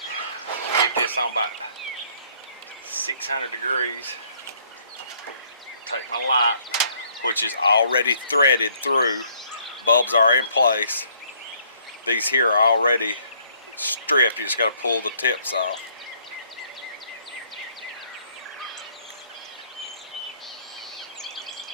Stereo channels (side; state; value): both; inverted; correlation -0.63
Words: Get this on about 600 degrees. Take my light, which is already threaded through. Bulbs are in place. These here are already stripped. You just got to pull the tips off.